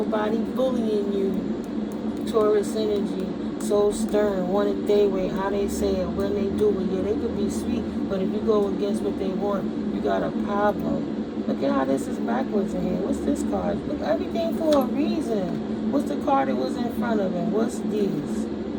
bullying you. Taurus energy. So stern, want it their way, how they say it, when they do it. Yeah, they could be sweet, but if you go against what they want, you got a problem. Look at how this is backwards in here. What's this card? Look, everything for a reason. What's the card that was in front of him? What's these?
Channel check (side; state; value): both; identical; correlation 1.00